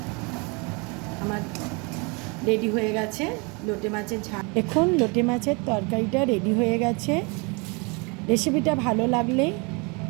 আমার রেডি হয়ে গেছে লোটে মাছের ঝাল। এখন লোটে মাছের তরকারিটা রেডি হয়ে গেছে। রেসিপিটা ভালো লাগলে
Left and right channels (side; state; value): left; quieter; 30.6 dB